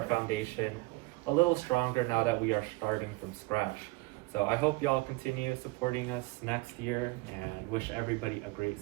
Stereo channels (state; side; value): quieter; left; 22.6 dB